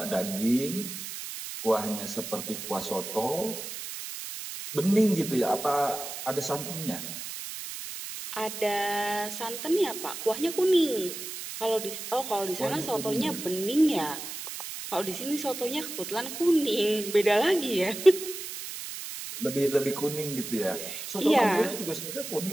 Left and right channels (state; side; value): noise; right; hiss, 8 dB below the sound